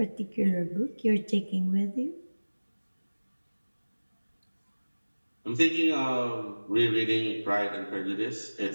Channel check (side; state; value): both; inverted; correlation -1.00